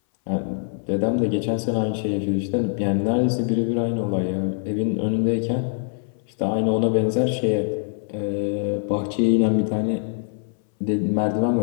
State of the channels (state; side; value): silent; right; 61 dB below the other